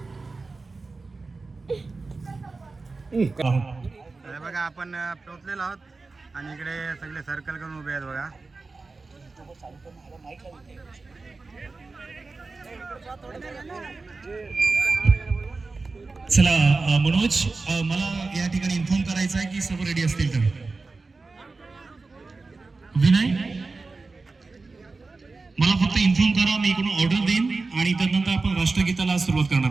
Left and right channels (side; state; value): left; quieter; 3.8 dB